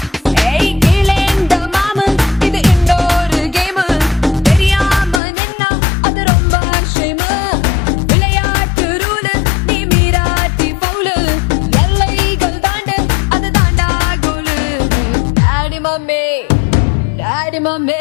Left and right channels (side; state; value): right; drops out; at 5.2 s